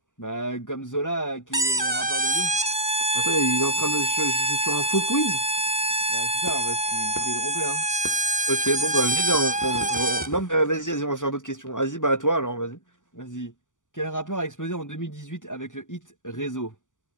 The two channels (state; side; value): late; right; 0.87 ms